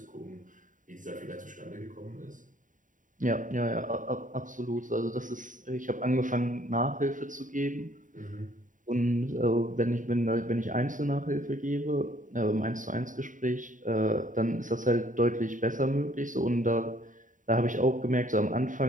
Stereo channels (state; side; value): late; left; 0.38 ms